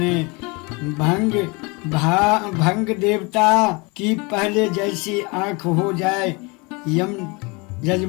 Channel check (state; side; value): quieter; right; 27.9 dB